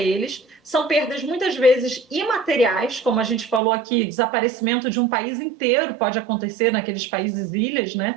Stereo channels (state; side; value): drops out; left; at 3.6 s